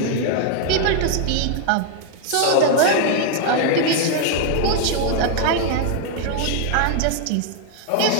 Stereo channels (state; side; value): different; both; correlation 0.00